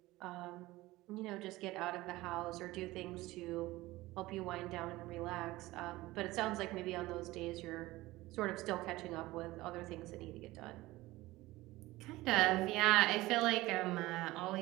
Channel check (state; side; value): quieter; left; 18.7 dB